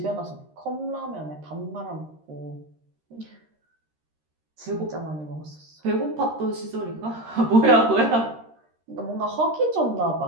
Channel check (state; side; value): late; left; 13 ms